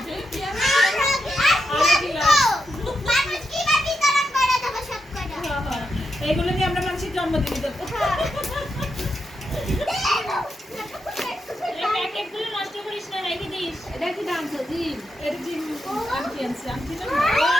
এগুলো নিয়ে আমরা মানুষের জন্মদিনে দেবো প্যাকেটগুলো নষ্ট করিস না রেখে দিস এটা কি দাম তো জিম এটা জিম আনছি আনছি না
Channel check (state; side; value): normal; both; correlation 0.85